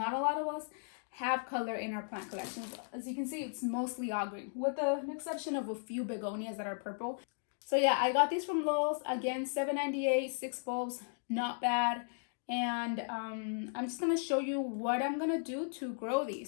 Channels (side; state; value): right; silent; digital silence